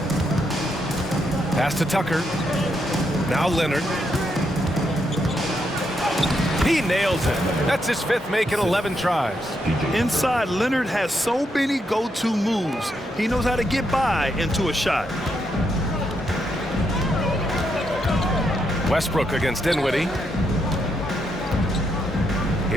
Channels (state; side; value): normal; both; correlation 0.79